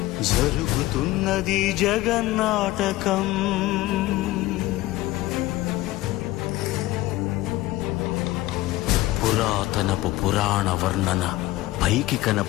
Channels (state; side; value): quieter; right; 17.4 dB